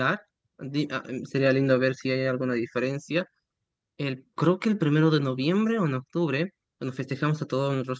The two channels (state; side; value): identical; both; correlation 1.00